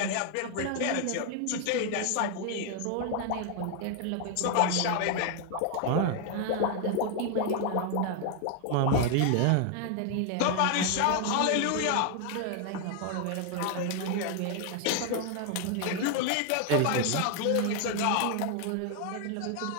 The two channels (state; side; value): different; both; correlation 0.00